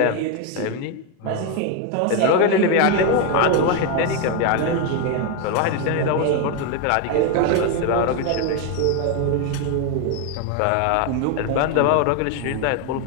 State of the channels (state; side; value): different; both; correlation 0.01